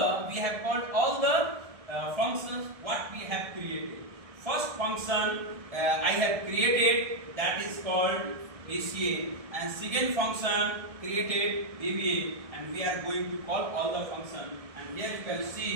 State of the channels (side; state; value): left; late; 1.6 ms